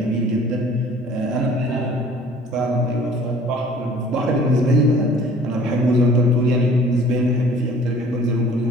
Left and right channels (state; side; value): normal; both; correlation 0.50